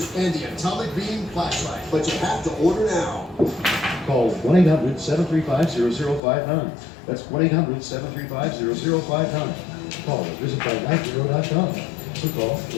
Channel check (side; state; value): right; drops out; at 6.2 s